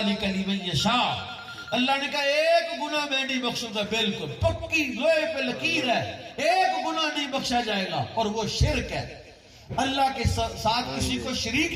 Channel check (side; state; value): both; identical; correlation 1.00